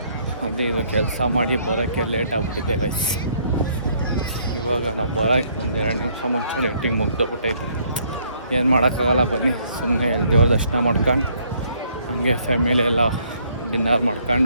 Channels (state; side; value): inverted; both; correlation -0.66